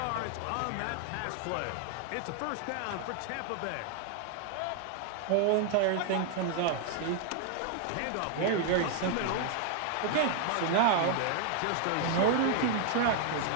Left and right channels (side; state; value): both; different; correlation 0.00